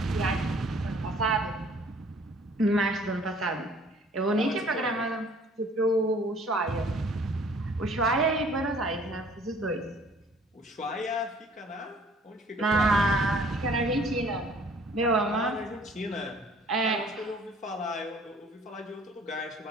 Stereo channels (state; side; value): normal; both; correlation 0.55